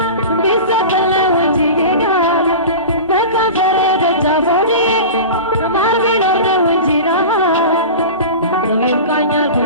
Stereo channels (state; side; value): inverted; both; correlation -0.31